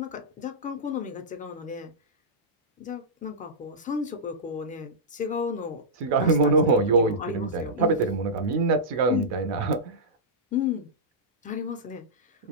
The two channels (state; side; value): normal; both; correlation -0.13